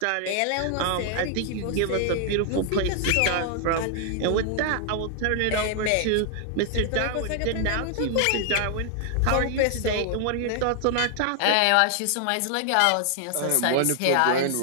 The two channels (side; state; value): both; different; correlation 0.00